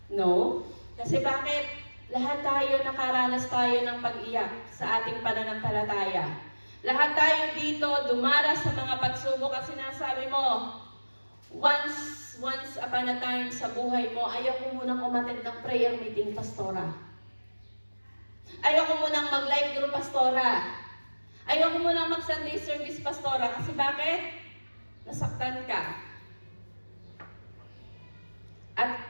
No? Kasi bakit? Lahat tayo nakaranas tayo ng pag-iyak sa ating pananampalataya. Lahat tayo dito dumaras sa mga pagsubok at sinasabi mo, once upon a time sa buhay mo, ayaw ko munang umattend ng prayer meeting, pastora. Ayaw ko munang mag-live group, pastora. Ayaw ko munang mag-Sunday service, pastora. Kasi bakit? Nasaktan ka.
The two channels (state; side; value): inverted; both; correlation -1.00